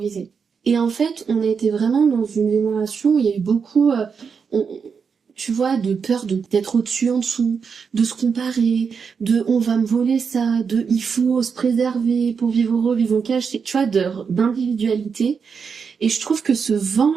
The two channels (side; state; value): left; quieter; 6.0 dB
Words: Et en fait, on a été vraiment dans une génération où il y a eu beaucoup, tu vois, de peur d'être au-dessus, en dessous, de se comparer, de on va me voler ça, de il faut se préserver pour vivre heureux, vivre en cage, tu vois, d'individualité. Et je trouve que ce